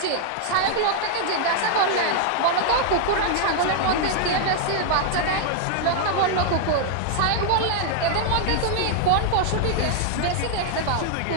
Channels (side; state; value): both; different; correlation 0.00